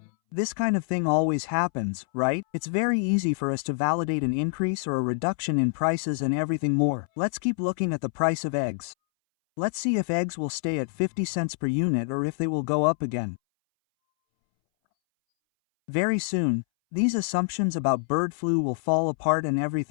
This kind of thing always happens, right? It's very easy for us to validate an increase or a reduction in prices and everything more. Let's keep looking at the price of eggs. Let's see if eggs will stay at 50 cents per unit or if they will go up again. Very soon, these assumptions about bird flu will fall apart and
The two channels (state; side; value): silent; right; 61 dB below the other